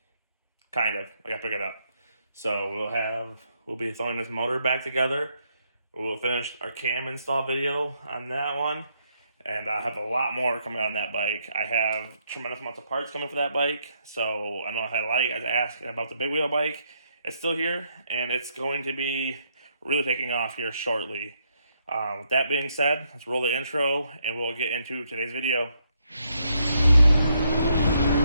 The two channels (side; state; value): both; inverted; correlation -0.75